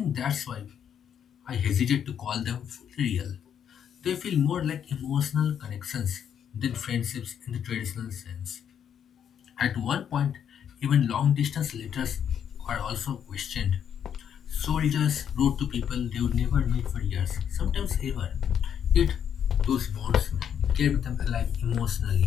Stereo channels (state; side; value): quieter; right; 8.6 dB